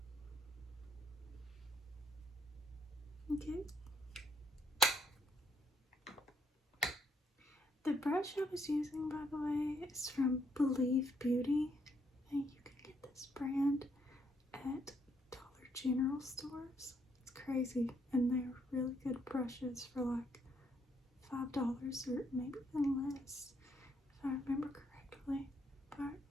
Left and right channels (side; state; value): both; normal; correlation 0.72